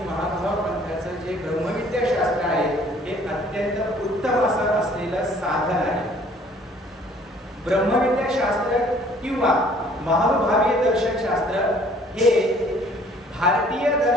महानुभाव पंथाचं जे ब्रह्मविद्या शास्त्र आहे हे अत्यंत उत्तम असं असलेलं साधन आहे. ब्रह्मविद्या शास्त्र किंवा महानुभावीय दर्शन शास्त्र हे भारतीय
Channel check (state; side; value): normal; both; correlation 0.57